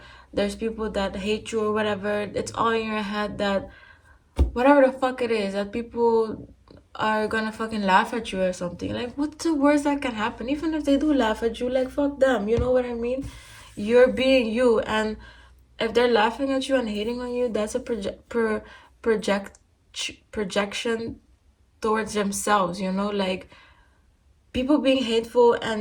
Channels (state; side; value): identical; both; correlation 1.00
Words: there's people that hate you or whatever. It's all in your head that whatever the fuck it is, that people are gonna fucking laugh at you or something. Like, what's the worst that can happen? Even if they do laugh at you, like, fuck them. You know what I mean? You're being you, and if they're laughing at you and hating on you, that's a project projection towards themselves. Like, people being hateful